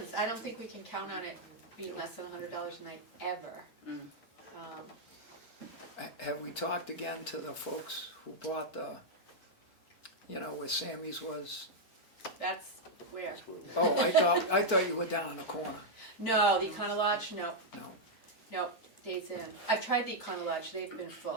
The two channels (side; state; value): right; late; 3.4 ms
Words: I don't think we can count on it being less than $100 a night ever. Have we talked again to the folks who bought the, you know, where Sammy's was? That's where. Oh, I thought you were down in the corner. No, the Econo Lodge, no, No. no, Days Inn. I've tried the Econo Lodge, they've been